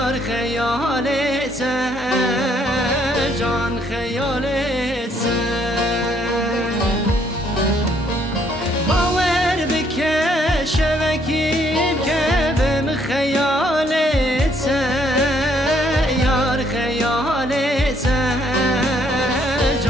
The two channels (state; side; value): normal; both; correlation 0.68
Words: خیالت جان خیالت باور بکه شبکیم که بم خیالت یار خیالت